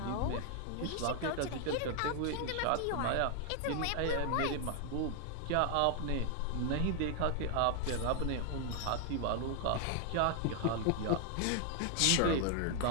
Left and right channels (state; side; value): different; both; correlation 0.00